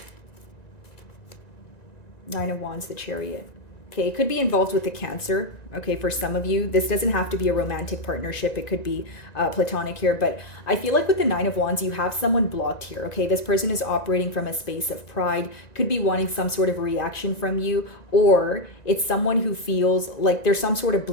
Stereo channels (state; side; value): late; right; 1.9 ms